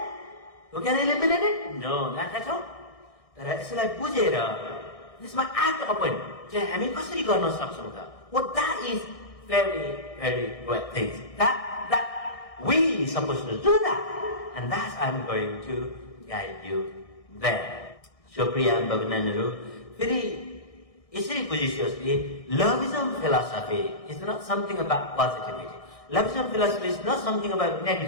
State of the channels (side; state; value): right; late; 1.6 ms